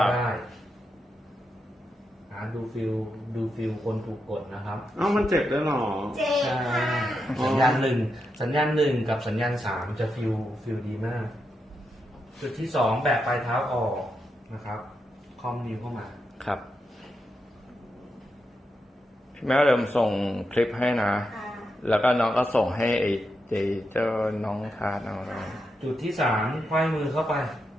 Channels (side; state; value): both; normal; correlation 0.85